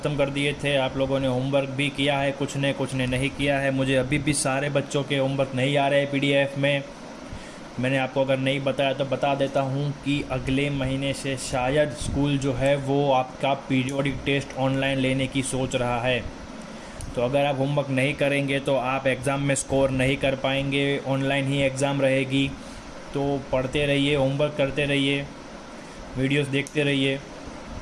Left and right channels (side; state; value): both; identical; correlation 1.00